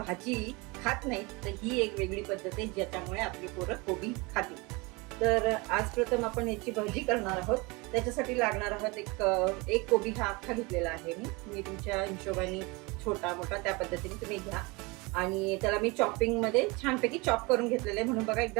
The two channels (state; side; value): quieter; left; 26.2 dB